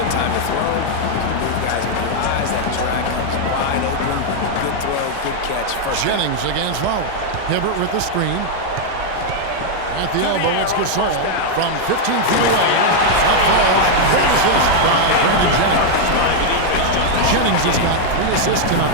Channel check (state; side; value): different; both; correlation 0.00